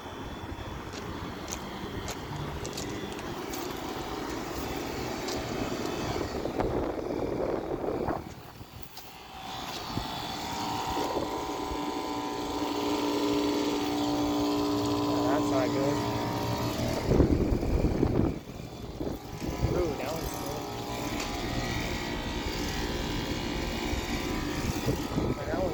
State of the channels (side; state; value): both; identical; correlation 1.00